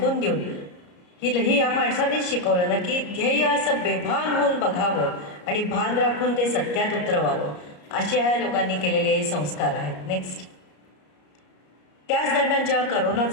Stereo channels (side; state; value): right; late; 33 ms